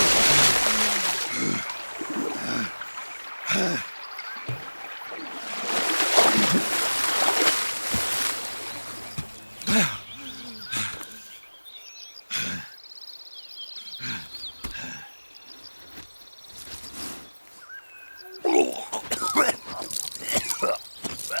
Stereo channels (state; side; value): inverted; both; correlation -1.00